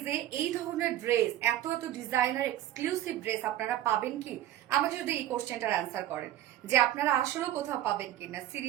এই ধরনের ড্রেস, এত এত ডিজাইনার এক্সক্লুসিভ ড্রেস আপনারা পাবেন কি? আমাকে যদি এই কোশ্চেনটার অ্যান্সার করেন যে আপনারা আসলেও কোথাও পাবেন কিনা,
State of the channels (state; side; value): quieter; left; 13.0 dB